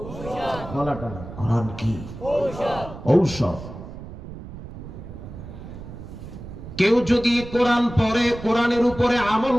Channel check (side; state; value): right; noise; rumble, 12 dB below the sound